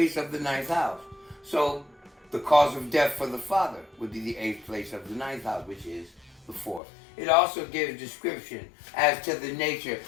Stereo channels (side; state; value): right; drops out; at 6.8 s